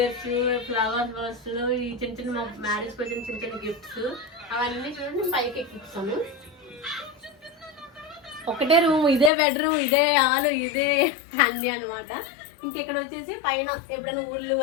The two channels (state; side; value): drops out; right; at 9.3 s